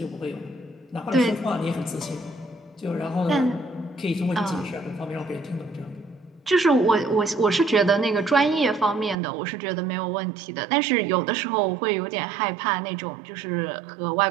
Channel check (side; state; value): left; drops out; at 9.2 s